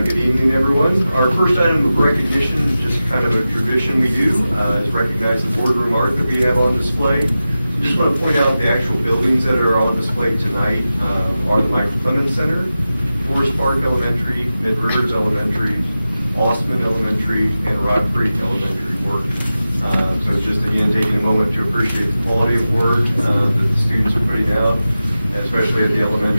evening, everyone. Our first item of recognition, just kind of a tradition we do, is recognize the boardroom art that we have on display. Just want to point out the actual buildings that are on display tonight are the Michael Clemens Center, Forest Park Elementary, Mid Rivers Elementary, Ostman Elementary, and Rock Creek Elementary work. So just again, taking a moment to appreciate the quality of work that the students are putting out, especially at the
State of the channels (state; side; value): inverted; both; correlation -0.93